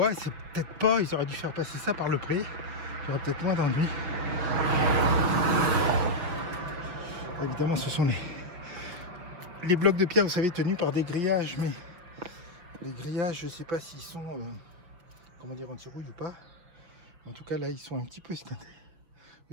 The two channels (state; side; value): late; left; 6.2 ms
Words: c'est peut-être pas... Ils auraient dû faire passer ça par le pré. Il y aurait peut-être moins d'ennuis. Évidemment, ce sont les blocs de pierre, vous savez, tenus par des grillages, mais les grillages, je ne sais pas s'ils sont, comment dire, anti-rouille ou pas. En tout cas, là, ils sont un petit peu estintés.